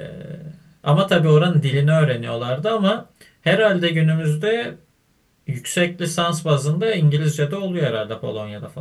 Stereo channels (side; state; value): both; identical; correlation 1.00